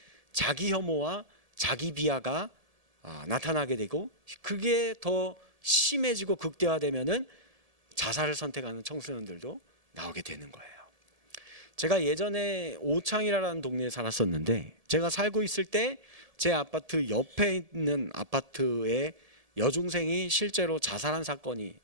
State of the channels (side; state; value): left; late; 1.7 ms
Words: 자기 혐오와 자기 비하가 나타나게 되고, 그게 더 심해지고 극대화되면은 자살을 선택하는 청소년들도 나오게 되는 거예요. 제가 예전에 오창이라는 동네에 살았었는데, 제가 살고 있을 때 제 아파트 옆에 있는 아파트에 여중생이 실제로 자살한 사건이